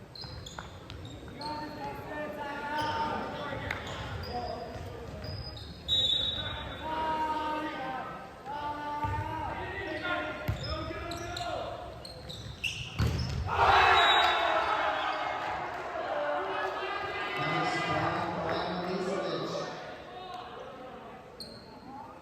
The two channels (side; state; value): both; identical; correlation 1.00